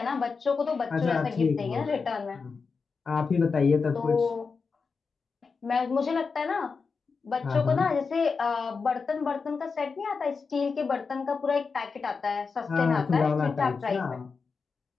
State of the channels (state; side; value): quieter; right; 4.9 dB